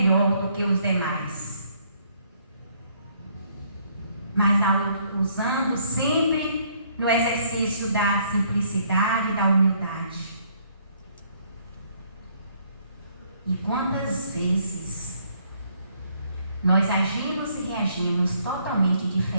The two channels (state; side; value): inverted; both; correlation -0.66